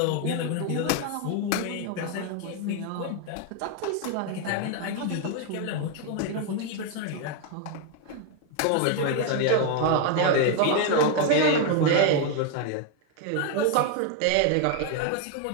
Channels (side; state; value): both; different; correlation 0.00